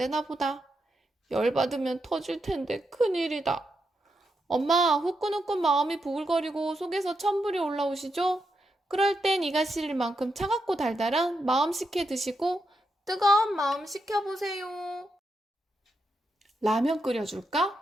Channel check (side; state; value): both; normal; correlation 0.83